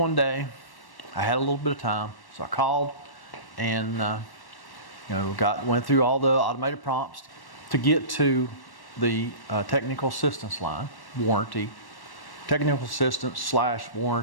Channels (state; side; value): late; right; 1.1 ms